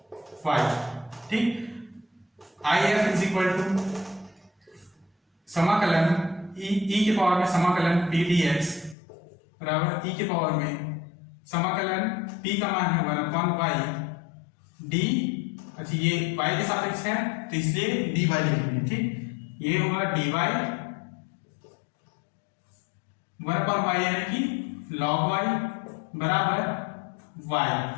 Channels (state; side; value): drops out; right; at 9.0 s